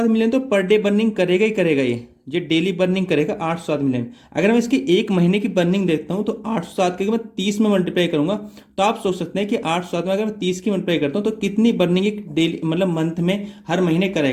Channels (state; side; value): identical; both; correlation 1.00